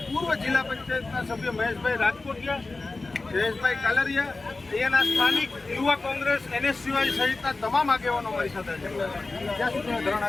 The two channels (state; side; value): quieter; right; 3.5 dB